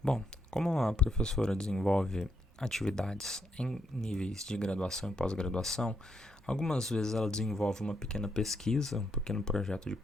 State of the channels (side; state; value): both; normal; correlation 0.78